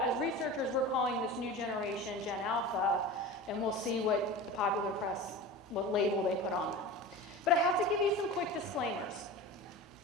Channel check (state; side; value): normal; both; correlation 0.32